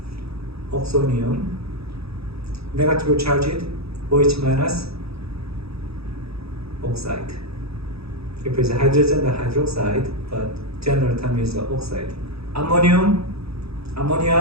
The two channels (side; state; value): left; late; 0.77 ms